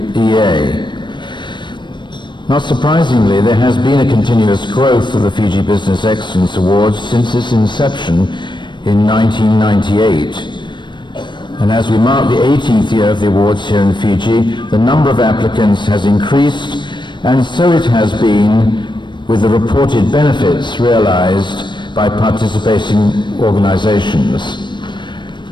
Not surprisingly, there has been a continuous growth of the Fiji Business Excellence Awards since its inception in 1998. And as we mark the 18th year of the awards here in Fiji, the number of applicants has increased, and so it has been with the reported benefits realized by participating organizations.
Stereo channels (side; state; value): right; late; 0.22 ms